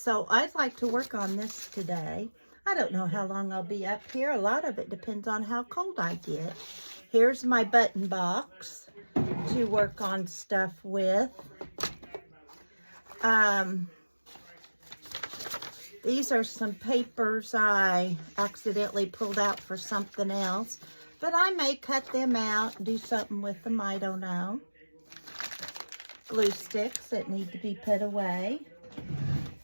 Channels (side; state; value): both; inverted; correlation -1.00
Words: So I'd like to work on this today. I don't know how long I'll be up here. A lot of it depends on how cold I get. Here's my button box to work on stuff with. These are some papers I accidentally pulled out for something else, but I may cut them out and do something with them, I don't know. Glue sticks that need to be put away.